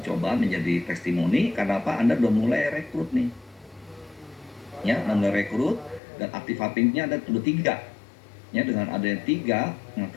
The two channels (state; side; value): drops out; right; at 6.0 s